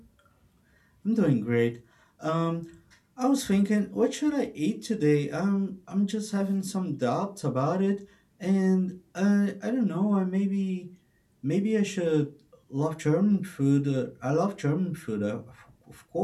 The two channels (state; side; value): identical; both; correlation 1.00